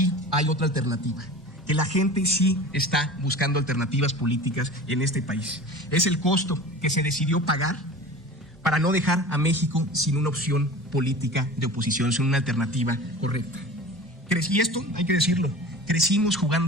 hay otra alternativa, que la gente sí está buscando alternativas políticas en este país. Es el costo que se decidió pagar para no dejar a México sin una opción política de oposición, sin una alternativa correcta. Y esto, hay que decirlo, crecimos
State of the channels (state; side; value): normal; both; correlation 0.37